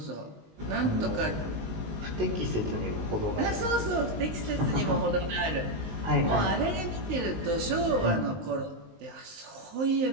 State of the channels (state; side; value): late; left; 19 ms